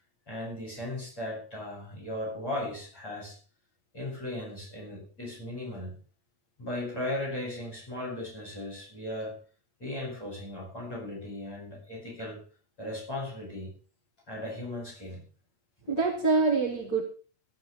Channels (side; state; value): right; late; 8.6 ms